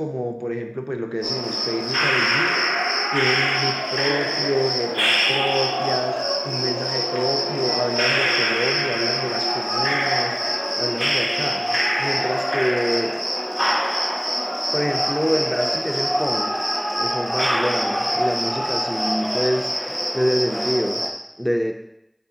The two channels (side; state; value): both; identical; correlation 1.00